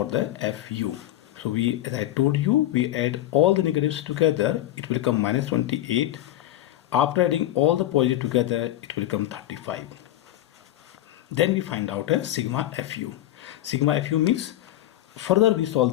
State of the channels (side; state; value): right; quieter; 14.0 dB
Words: the FU. So as I told you, we add all the negatives together, it will come minus 28. After adding all the positive together, it will become 35. Then we find out a sigma FU. Sigma FU means, further we